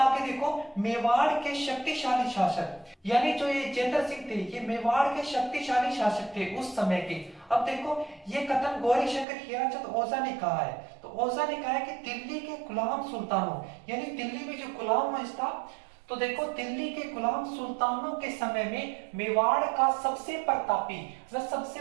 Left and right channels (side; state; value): left; drops out; at 9.2 s